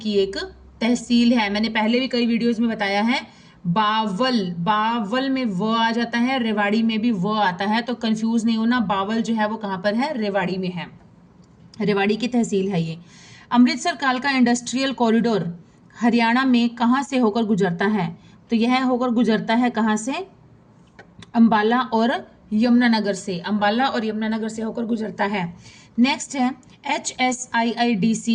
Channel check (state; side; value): identical; both; correlation 1.00